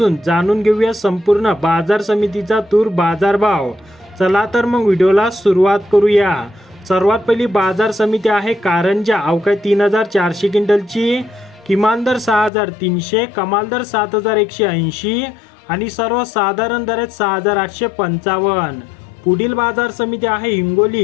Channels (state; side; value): drops out; right; at 12.5 s